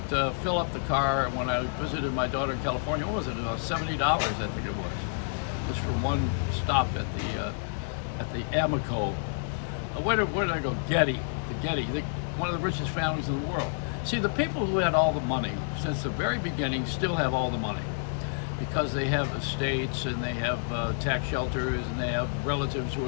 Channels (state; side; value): silent; right; 59 dB below the other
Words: to fill up the car when I visited my daughter in California. What was it? About $70, I think it was. Just for one stop at the Amoco. Where did I go? Getty. The Getty. One of the richest families in the world. See, the people who had all the money since the very beginning still have all the money because they have estates and they have tax shelters and they have relatives who